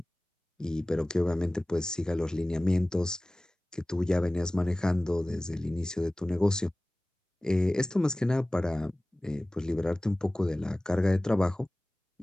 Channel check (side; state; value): both; normal; correlation 0.98